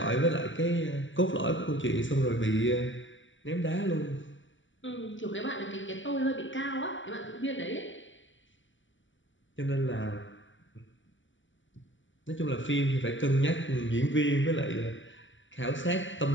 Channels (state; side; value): late; right; 0.55 ms